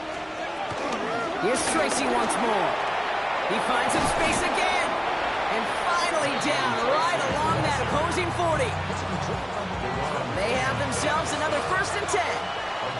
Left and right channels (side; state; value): both; identical; correlation 1.00